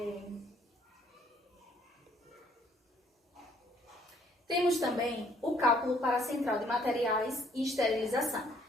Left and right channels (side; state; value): both; normal; correlation 0.63